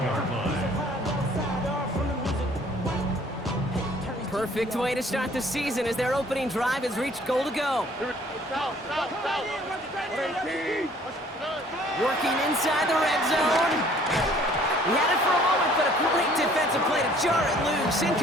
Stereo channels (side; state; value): both; normal; correlation 0.56